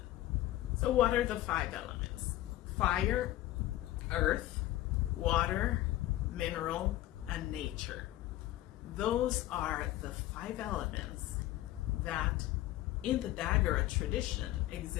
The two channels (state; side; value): quieter; right; 15.2 dB